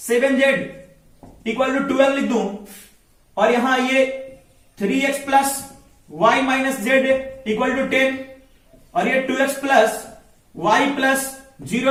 equal to 12 लिख दूं और यहां ये 3x plus y minus Z equal to 10 और ये 2x plus y plus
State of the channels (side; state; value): both; identical; correlation 1.00